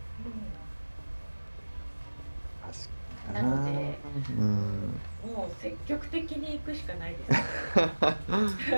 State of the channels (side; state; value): both; inverted; correlation -1.00